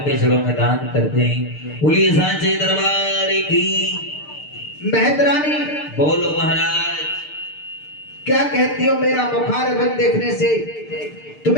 चरणों में दान करते हैं। बोलिए सांचे दरबार की। मेहतरानी, बोलो महाराज। क्या कहती हो, मेरा बुखार बंद देखने से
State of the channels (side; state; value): right; late; 6.7 ms